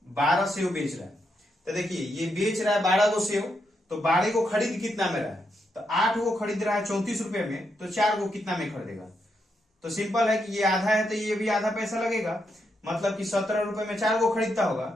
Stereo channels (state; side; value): normal; both; correlation 0.81